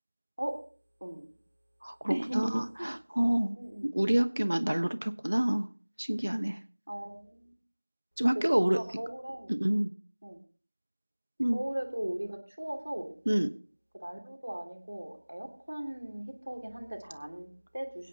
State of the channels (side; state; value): both; inverted; correlation -1.00